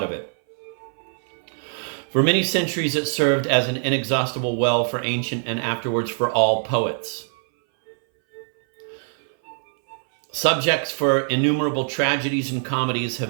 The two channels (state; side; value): silent; left; 60 dB below the other